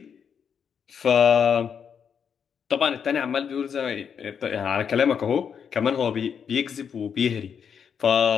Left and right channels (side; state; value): right; quieter; 7.3 dB